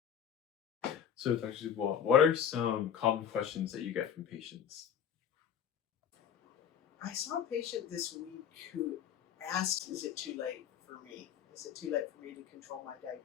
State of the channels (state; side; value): quieter; right; 8.6 dB